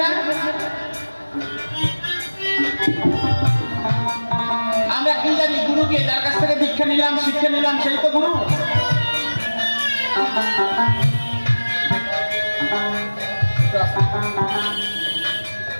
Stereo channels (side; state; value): both; inverted; correlation -1.00